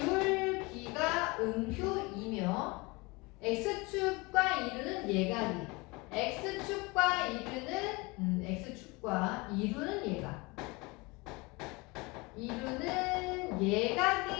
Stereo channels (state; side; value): quieter; right; 25.5 dB